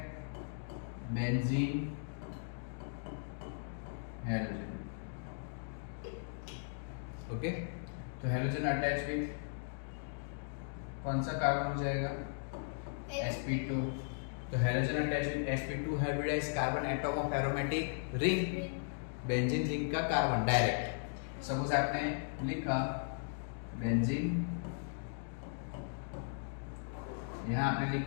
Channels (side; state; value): right; silent; digital silence